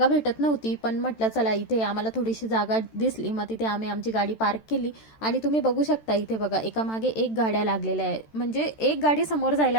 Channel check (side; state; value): right; late; 13 ms